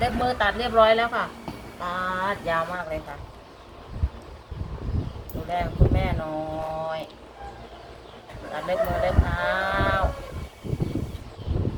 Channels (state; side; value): identical; both; correlation 1.00